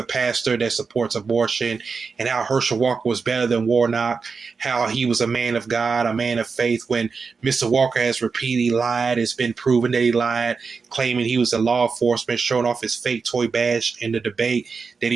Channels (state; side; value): quieter; left; 5.0 dB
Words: pastor that supports abortion, and how Herschel Walker was better than Warnock, how he was a man of God, a man of faith, when Mr. Walker has repeatedly lied. It's been proven that he lied, claiming he was a law enforcement, showing off his fake toy badge in the debate that